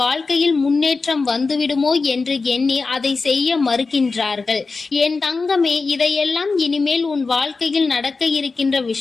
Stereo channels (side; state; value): right; quieter; 4.1 dB